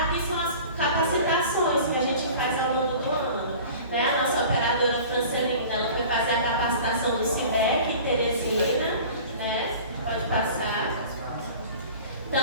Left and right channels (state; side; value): inverted; both; correlation -0.42